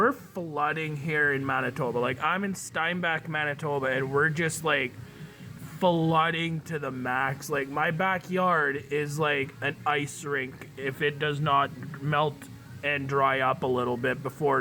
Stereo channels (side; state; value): both; identical; correlation 1.00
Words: flooding here in Manitoba. Like, I'm in Steinbach, Manitoba, and we're just like flooding to the max. Like, my backyard is like an ice rink if it does not melt and dry up a little bit